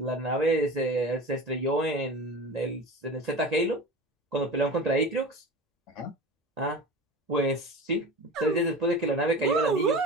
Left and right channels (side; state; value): both; normal; correlation 0.33